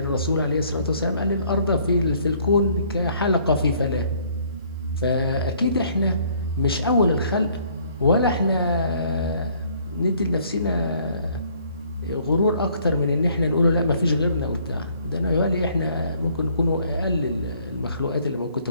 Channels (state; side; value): inverted; both; correlation -0.62